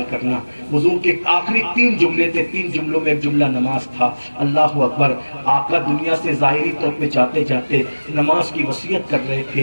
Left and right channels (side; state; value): both; inverted; correlation -1.00